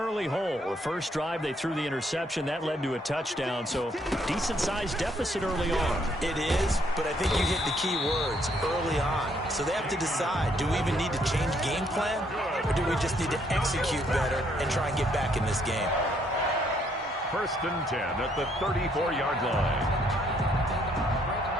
hole. The first drive, they threw the interception. That led to a touchdown, so decent-sized deficit early on. It is, but I think you hit the key words, early on. So they have to decide, do we even need to change game plan, or do we just need to execute better and try and get back in this game? First and 10 at the 34-yard line.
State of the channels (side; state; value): both; normal; correlation 0.69